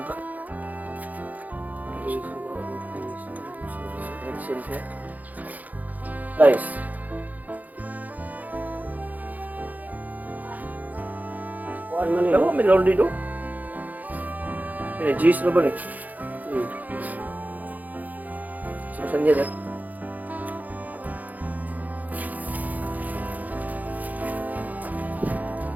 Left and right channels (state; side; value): late; left; 0.080 ms